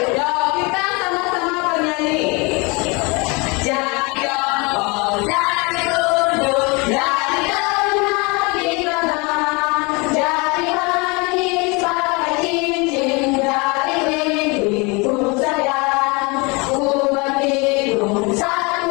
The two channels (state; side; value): quieter; right; 28.1 dB